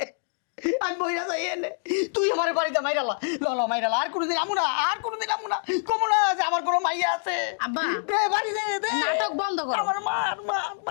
আমি বইরা যাই এনে, তুই আমার বাড়িতে মাইরালা, ল মাইরালা, আর কোনোদিন আমু না, আর কোনোদিন আমু না, কমু না যে আমার কোনো মাইয়া আছে। আব্বা, দে বাড়ি দে, দে নাটক বন্ধ করো। আমার মার মার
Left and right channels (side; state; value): right; silent; digital silence